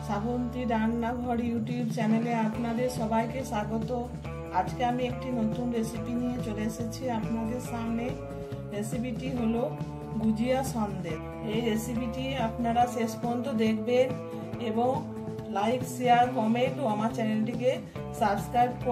শ্রাবন্তী রান্নাঘর ইউটিউব চ্যানেলে আপনাদের সবাইকে স্বাগত। আজকে আমি একটি নতুন রেসিপি নিয়ে চলে এসেছি আপনাদের সামনে। রেসিপিটি হলো গুজিয়া সন্দেশ। এই রেসিপিটি আপনারা শেষ পর্যন্ত দেখবেন এবং লাইক, শেয়ার, কমেন্ট ও আমার চ্যানেলটিকে সাবস্ক্রাইব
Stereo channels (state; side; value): identical; both; correlation 1.00